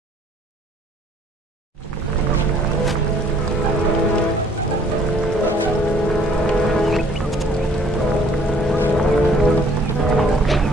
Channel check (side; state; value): both; normal; correlation 0.59